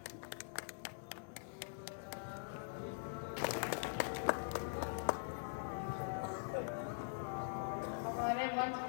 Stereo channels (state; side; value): silent; right; digital silence